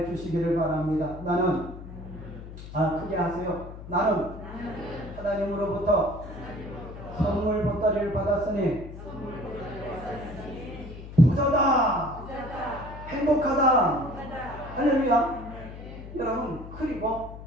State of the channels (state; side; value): noise; left; hum, 13 dB below the sound